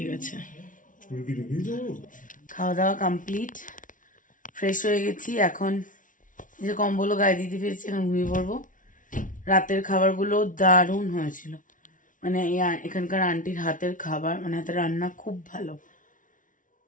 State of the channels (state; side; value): late; right; 0.38 ms